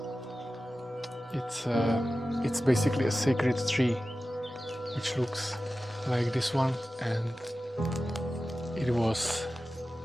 It's basically a sacred tree which looks like this one, and it was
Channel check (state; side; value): normal; both; correlation 0.94